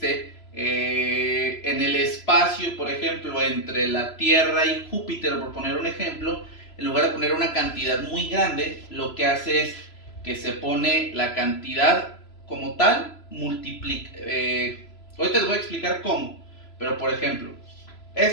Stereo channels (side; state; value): right; late; 3.0 ms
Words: en el espacio, por ejemplo, entre la Tierra y Júpiter, por poner un ejemplo, en lugar de poner una cantidad muy grande, lo que hace es que se pone la cantidad como tal, multiplica. Ahorita les voy a explicar cómo, pero por ejemplo,